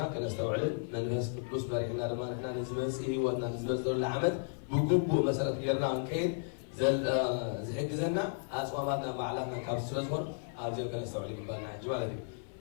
كنستوعلن من ناس فلوس بريحنا لما نحنا نزمس إيه ونا نزمس دول العمد بجوبو مثلا غيرنا عن كيد زي زنا أسواماتنا معلقنا كابس سلسفور أبزاي كنستوعلن بالنا حجي مالدي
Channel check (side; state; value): right; silent; 55 dB below the other